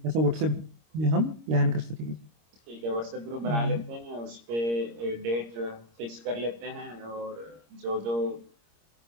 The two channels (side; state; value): left; late; 26 ms